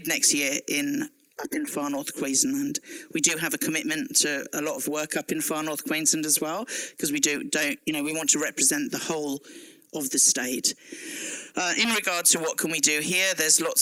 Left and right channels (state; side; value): identical; both; correlation 1.00